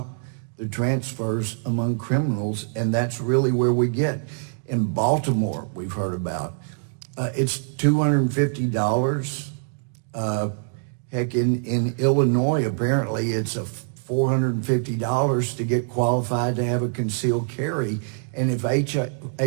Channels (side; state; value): left; silent; 62 dB below the other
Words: the transfers among criminals, and that's really where we get. In Baltimore, we've heard about, it's $250. Heck, in Illinois, apparently it's a $450 to get qualified to have a concealed carry. And if